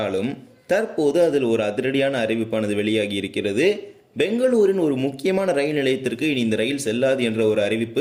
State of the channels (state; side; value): identical; both; correlation 1.00